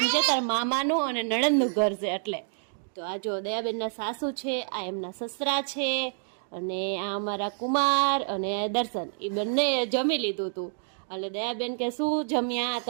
તાર મામાનું અને નણંદનું ઘર છે એટલે. તો આ જો દયાબેનના સાસુ છે, આ એમના સસરા છે અને આ અમારા કુમાર અને દર્શન એ બંને જમી લીધું હતું. એટલે દયાબેન કે શું જમ્યા? તો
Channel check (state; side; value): silent; left; digital silence